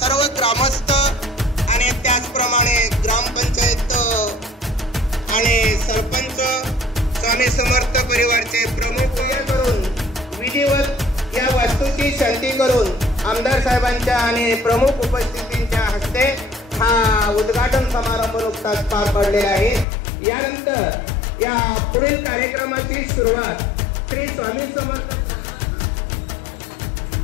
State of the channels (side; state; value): right; drops out; at 19.9 s